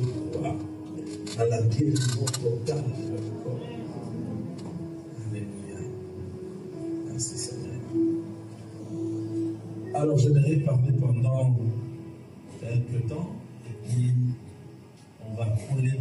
crois à la guérison totale de leur corps. Alléluia. Merci Seigneur. Alors j'aimerais parler pendant quelques temps et puis on va couler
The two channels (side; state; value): both; identical; correlation 1.00